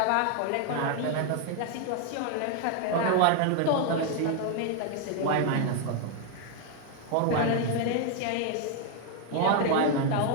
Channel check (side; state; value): both; different; correlation 0.00